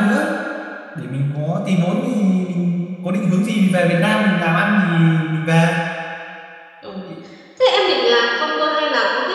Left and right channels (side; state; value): both; identical; correlation 1.00